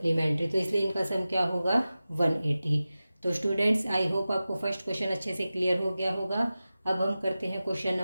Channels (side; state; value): both; inverted; correlation -0.95